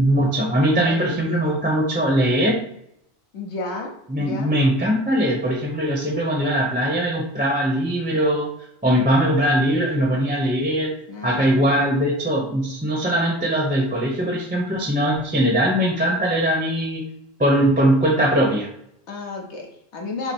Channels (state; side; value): normal; both; correlation 0.43